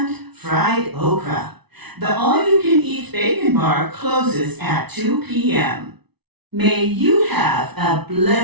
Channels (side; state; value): left; late; 0.99 ms